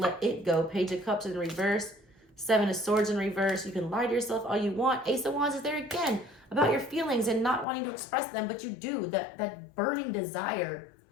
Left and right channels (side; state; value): right; drops out; at 7.7 s